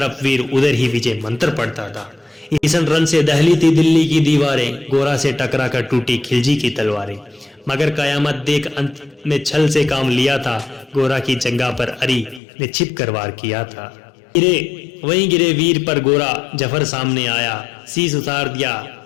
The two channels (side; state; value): right; drops out; at 12.4 s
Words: वीर उधर ही विजय मंत्र पढ़ता था। ईसन रण से दहली थी दिल्ली की दीवारें, गोरा से टकरा कर टूटी खिलजी की तलवारें। मगर कयामत देख अंत में छल से काम लिया था, गोरा की जंगा पर अरी ने छिप कर वार किया था। गिरे वहीं गिरे वीर पर गोरा जफर सामने आया, शीश उतार दिया